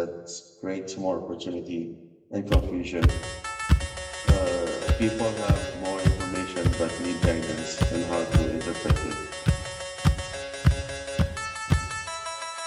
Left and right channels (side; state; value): both; identical; correlation 1.00